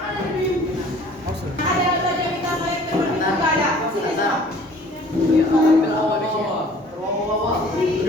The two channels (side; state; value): both; normal; correlation 0.51